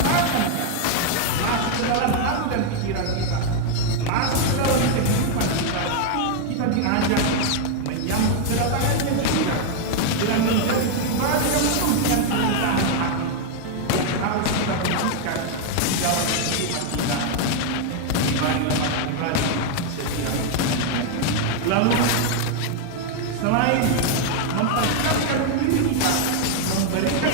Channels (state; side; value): different; both; correlation 0.00